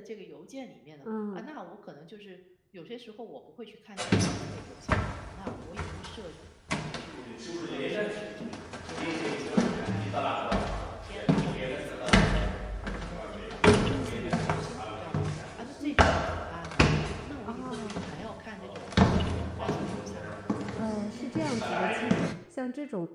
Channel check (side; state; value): both; identical; correlation 1.00